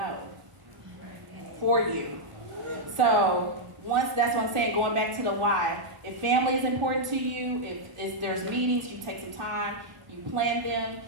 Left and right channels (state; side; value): late; left; 1.4 ms